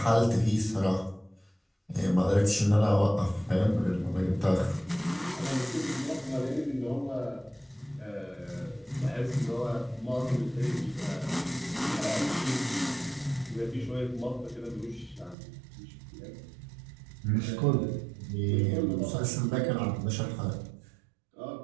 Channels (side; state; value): left; drops out; at 15.4 s